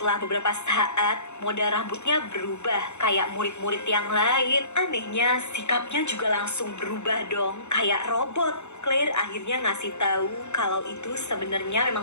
beberapa saat, model rambutnya berubah kayak murid-murid yang lain. Anehnya, sikapnya juga langsung berubah dong, kayak robot. Claire akhirnya ngasih tahu kalau itu sebenarnya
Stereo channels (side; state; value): right; late; 0.82 ms